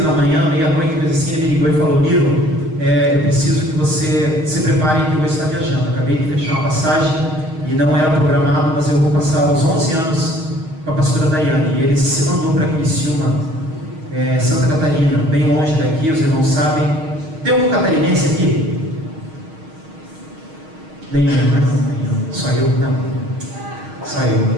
na manhã, meia-noite, mas assim, ele me ligou e falou: Niro, eu preciso que você se prepare que eu vou estar viajando. Acabei de fechar uma passagem e não era programado, mas eu vou passar os 11 anos com a pastora Daiane. E ele se mandou para Criciúma, Santa Catarina, bem longe daqui, os irmãos sabem. Tem algum catarinense aqui? Nenhum, né? Nenhum. Só eu? Não. Só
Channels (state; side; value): late; left; 6.4 ms